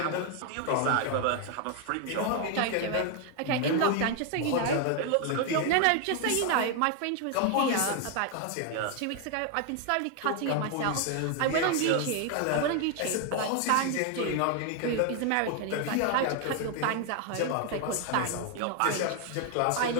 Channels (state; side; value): different; both; correlation 0.01